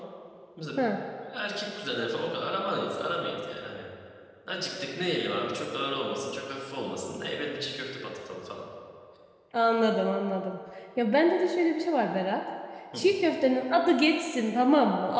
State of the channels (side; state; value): both; identical; correlation 1.00